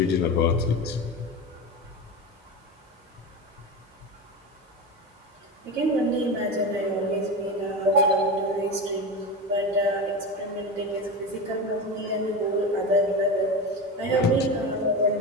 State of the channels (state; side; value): normal; both; correlation 0.22